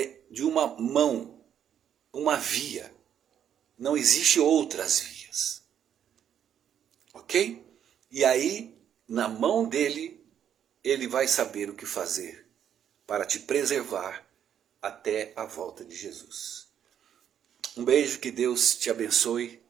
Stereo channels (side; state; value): left; quieter; 9.3 dB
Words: de uma mão, uma via. Não existe outras vias. Ok? E aí, na mão dele, ele vai saber o que fazer para te preservar até a volta de Jesus. Um beijo, que Deus te abençoe,